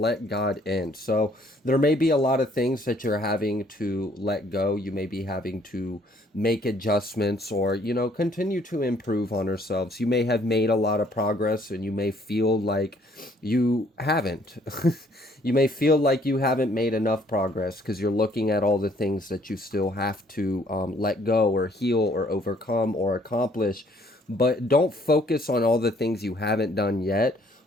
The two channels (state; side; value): normal; both; correlation 0.63